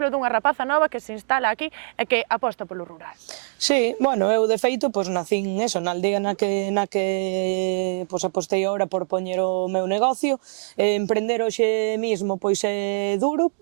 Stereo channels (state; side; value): silent; left; digital silence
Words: dunha rapaza nova que se instala aquí e que aposta polo rural. Sí, bueno, eu de feito pois nacín eso, na aldea na que pois apostei agora por poñer o meu negocio. Emprender hoxe mismo pois é duro,